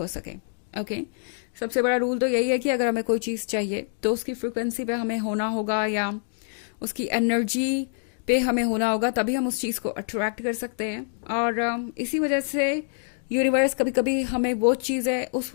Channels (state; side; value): silent; right; digital silence